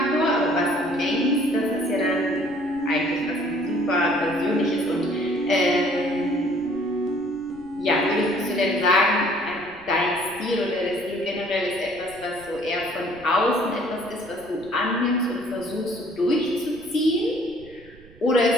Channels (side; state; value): right; noise; rumble, 23 dB below the sound